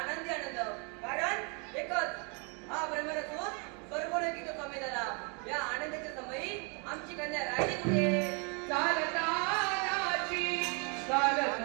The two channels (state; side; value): quieter; left; 34.8 dB